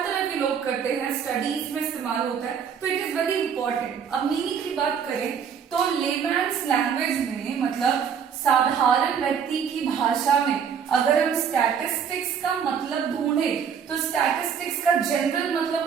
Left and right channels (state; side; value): quieter; left; 7.3 dB